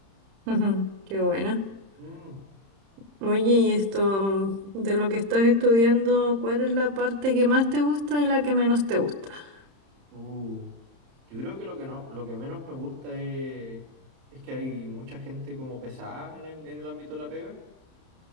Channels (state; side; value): late; left; 31 ms